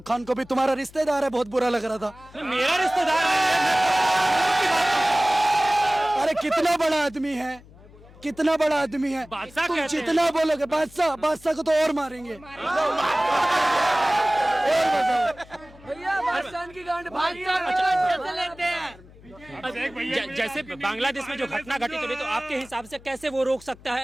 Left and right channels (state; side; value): noise; left; hum, 22 dB below the sound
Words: खान को भी, तुम्हारा रिश्तेदार है, बहुत बुरा लग रहा था। मेरा रिश्तेदार है। अरे कितना बड़ा आदमी है, कितना बड़ा आदमी है। बादशाह तुम कहते हैं। जितना बोलोगे बादशाह, बादशाह को तो और मारेंगे। जैसे बांग्लादेश में जो घटना घटित हो रही, तो आपके हिसाब से कैसे वो रोक सकता